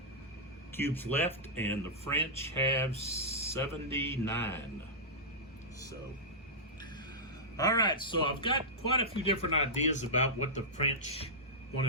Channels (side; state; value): both; normal; correlation -0.11